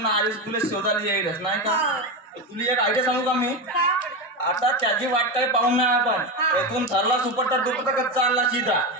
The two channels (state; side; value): normal; both; correlation 0.16